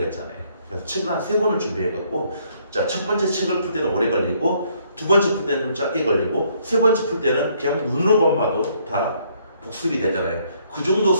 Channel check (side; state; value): both; inverted; correlation -0.67